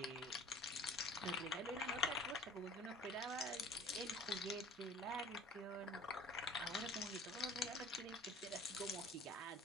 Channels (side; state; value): both; normal; correlation 0.47